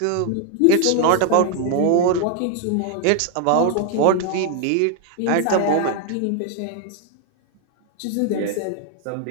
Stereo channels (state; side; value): different; both; correlation 0.01